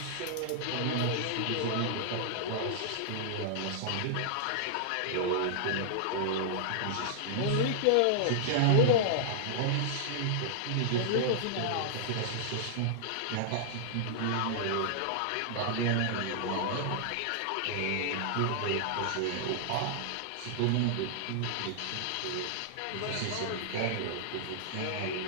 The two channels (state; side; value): different; both; correlation -0.01